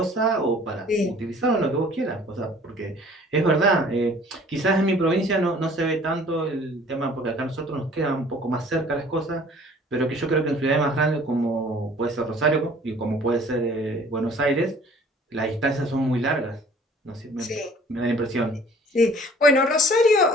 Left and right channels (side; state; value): both; normal; correlation 0.52